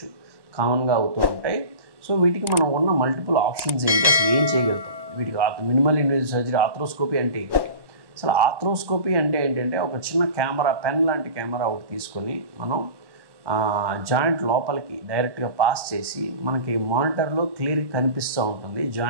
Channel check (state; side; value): late; left; 1.1 ms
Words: కామన్గా అవుతూ ఉంటాయి. సో వీటికి మనం ఉన్న మల్టిపుల్ ఆప్షన్స్ ఏంటి, అసలు ఏం చేయగలుగుతాం, వీటికి మినిమల్ ఇన్వేజివ్ సర్జరీ ఆర్థ్రోస్కోపీ అంటే ఏంటి? అసలు ఆర్థ్రోస్కోపీ అంటే ఏంటంటే ఒక చిన్న కెమెరా, పెన్ లాంటి కెమెరా ఒకటి తీసుకొని మనం జాయింట్ లోపలికి డైరెక్ట్గా పాస్ చేసి మనకి మానిటర్లో క్లియర్గా కనిపిస్తూ ఉంటుంది